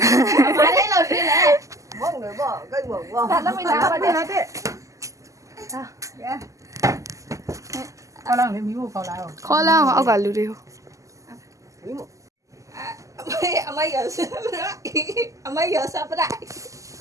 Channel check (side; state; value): left; late; 0.16 ms